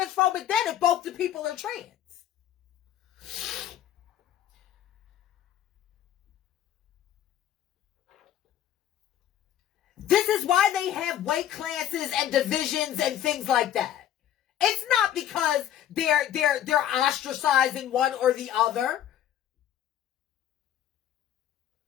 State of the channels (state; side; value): quieter; right; 11.2 dB